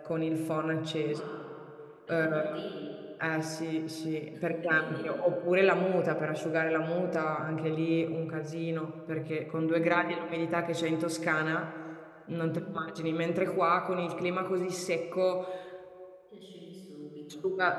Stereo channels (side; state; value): both; identical; correlation 1.00